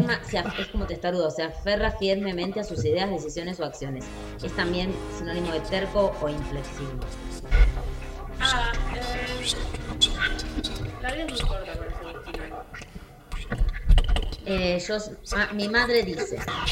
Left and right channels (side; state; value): both; identical; correlation 1.00